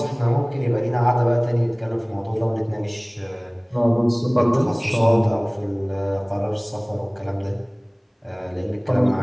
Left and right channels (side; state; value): both; identical; correlation 1.00